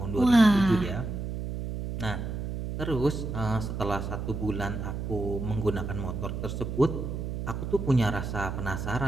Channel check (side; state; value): right; noise; hum, 4 dB below the sound